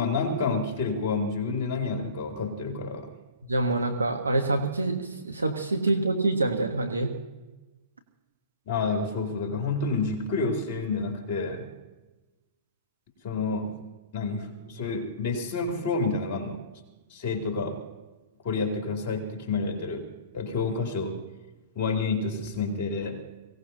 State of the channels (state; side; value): inverted; both; correlation -0.42